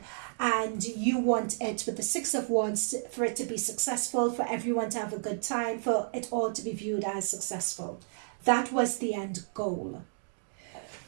And you want it, with the Six of Wands, for it to be successful, for everyone to have a good time, for it all to be viewed as successful. That was the end goal.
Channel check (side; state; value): left; silent; digital silence